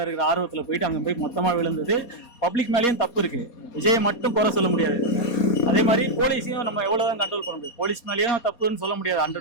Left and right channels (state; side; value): late; right; 4.2 ms